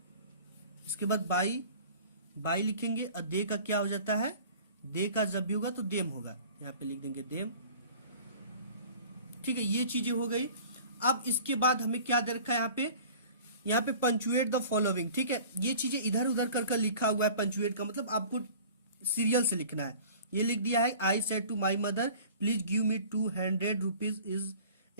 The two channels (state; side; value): inverted; both; correlation -0.45